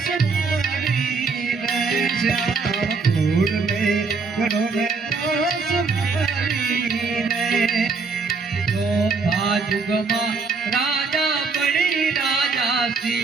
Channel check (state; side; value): quieter; left; 4.6 dB